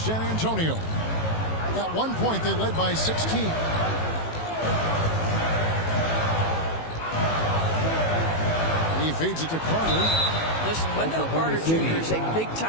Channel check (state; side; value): late; right; 18 ms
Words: Antonio. At one point, they led by 16. He feeds it to Carter. Listen, Wendell Carter Jr. is a